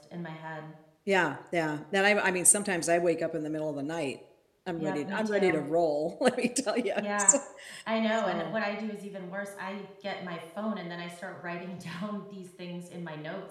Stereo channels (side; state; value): both; identical; correlation 1.00